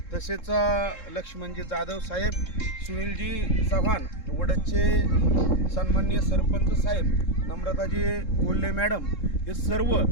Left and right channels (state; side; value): late; right; 3.7 ms